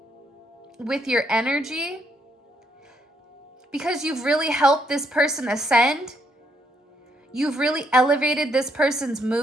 with your energy because you've really helped this person ascend. You've really elevated this person's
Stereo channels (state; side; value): normal; both; correlation 0.73